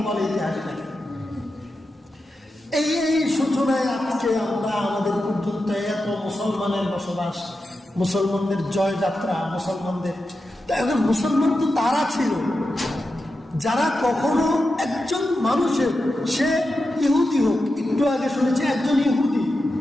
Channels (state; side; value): normal; both; correlation 0.90